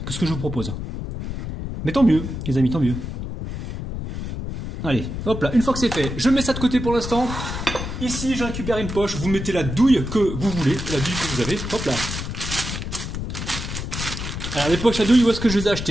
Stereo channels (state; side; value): noise; left; rumble, 6 dB below the sound